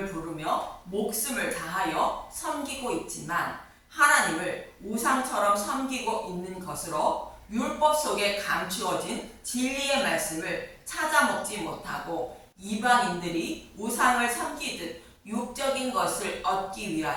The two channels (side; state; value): both; identical; correlation 1.00